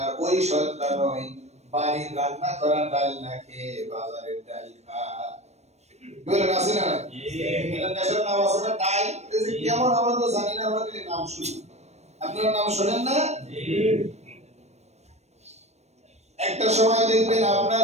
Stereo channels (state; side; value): late; left; 0.32 ms